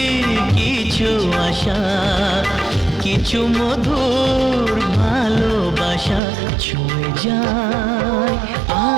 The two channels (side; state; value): left; drops out; at 6.2 s